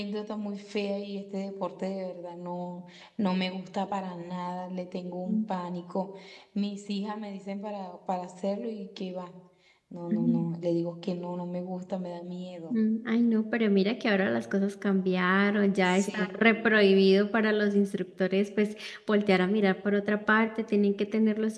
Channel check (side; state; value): both; identical; correlation 1.00